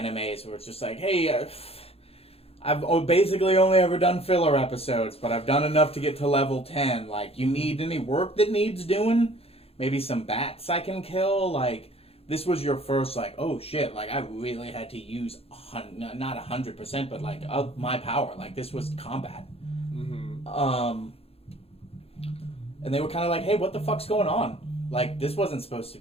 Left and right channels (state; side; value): late; right; 0.29 ms